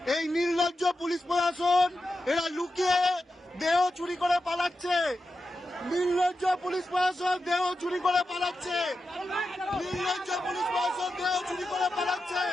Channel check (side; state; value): both; normal; correlation 0.90